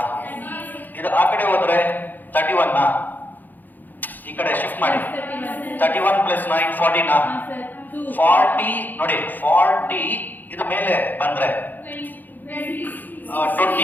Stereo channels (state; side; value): late; right; 0.086 ms